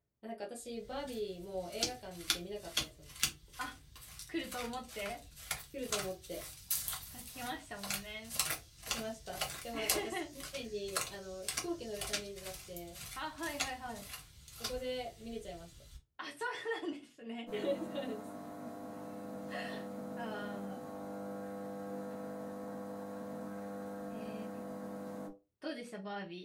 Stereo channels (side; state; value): both; identical; correlation 1.00